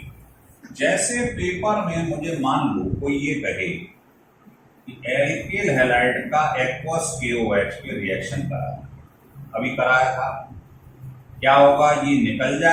जैसे पेपर में मुझे मान लो कोई ये कहे कि एल्किल हैलाइड का एक्वस KOH के रिएक्शन करा, अभी कराया था, क्या होगा? ये निकल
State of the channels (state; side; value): identical; both; correlation 1.00